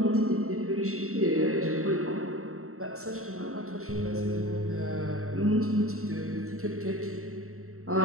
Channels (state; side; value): late; left; 0.63 ms